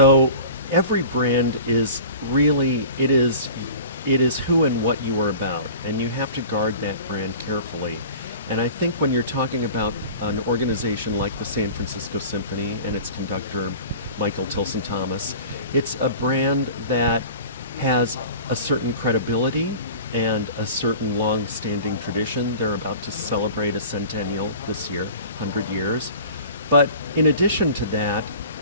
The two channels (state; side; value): inverted; both; correlation -0.41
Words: every brand is really, it is who and what you are about, and you have to guard that brand carefully. And I think when you're talking about an organization like the San Francisco Symphony and its conductor, Michael Tilson Thomas, it's a brand that has a certain credibility and a certain long-standing tradition. They're about to celebrate a centennial this year, 100 years. But in addition to that,